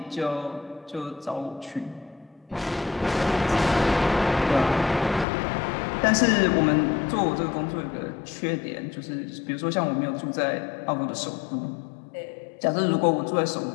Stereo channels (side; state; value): right; drops out; at 5.2 s